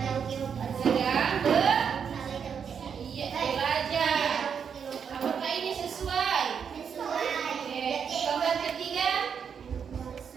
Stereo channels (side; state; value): left; quieter; 7.1 dB